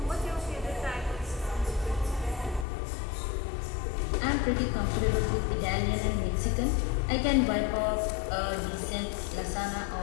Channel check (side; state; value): right; drops out; at 2.7 s